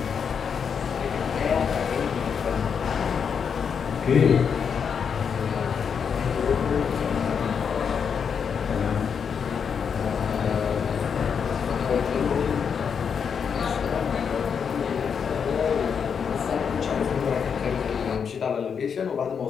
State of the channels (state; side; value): quieter; right; 6.8 dB